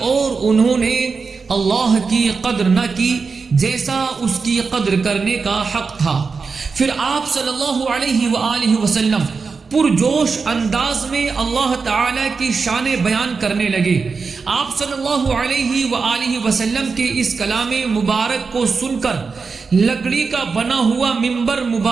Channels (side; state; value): left; quieter; 4.9 dB